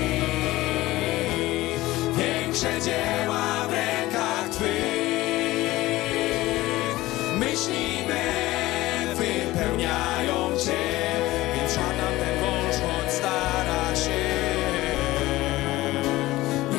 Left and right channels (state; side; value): quieter; right; 17.8 dB